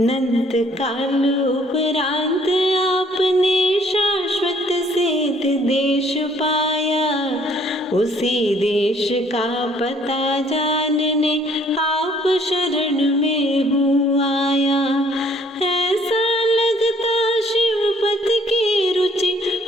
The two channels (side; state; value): both; normal; correlation 0.61